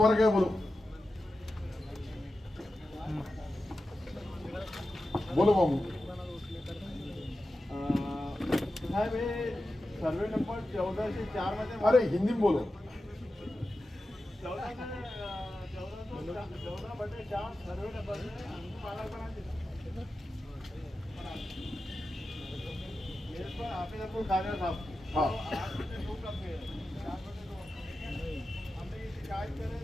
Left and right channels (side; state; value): both; normal; correlation 0.92